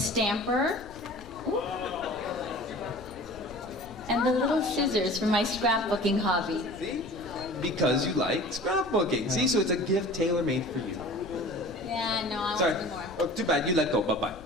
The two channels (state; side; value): noise; left; rumble, 20 dB below the sound